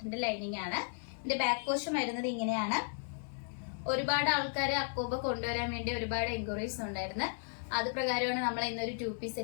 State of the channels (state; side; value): silent; right; digital silence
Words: ലൈനിങ് ആണ്. ഇതിന്റെ ബാക്ക് പോർഷൻ വരുന്നത് ഇങ്ങനെയാണ്. ഒരുപാട് ആൾക്കാർ അക്കോബ കൊണ്ടുവരാൻ വേണ്ടി ഒരുപാട് എൻക്വയറീസ് ഉണ്ടായിരുന്നു. അത് പ്രകാരമാണ് നമ്മൾ ഇന്നൊരു 2-പീസ്